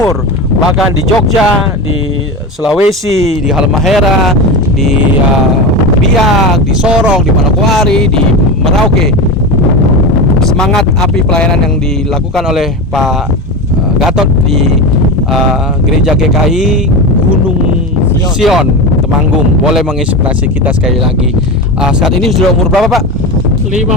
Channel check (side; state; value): both; normal; correlation 0.23